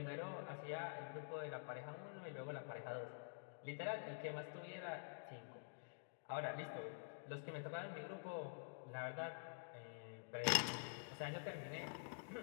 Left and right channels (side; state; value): right; silent; digital silence